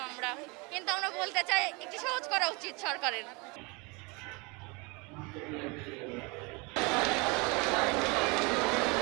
আমরা, কিন্তু আমরা বলতে চাই একটু সহজ করা উচিত সরকারের।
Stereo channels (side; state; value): left; quieter; 28.4 dB